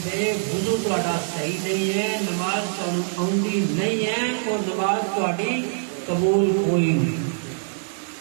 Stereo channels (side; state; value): left; silent; digital silence